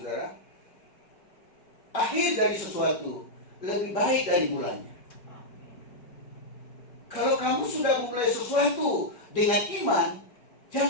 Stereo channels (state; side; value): late; right; 5.4 ms